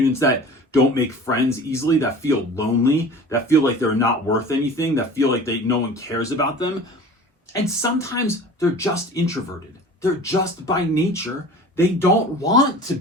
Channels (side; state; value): both; normal; correlation 0.41